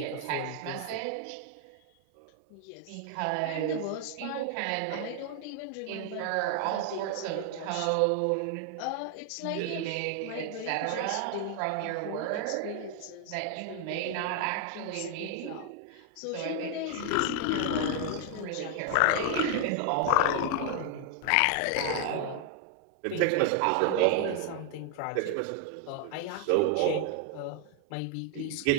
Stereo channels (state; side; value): different; both; correlation 0.00